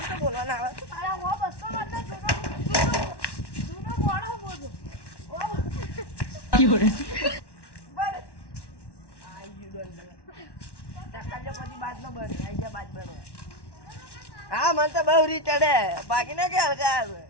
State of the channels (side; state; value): right; late; 1.1 ms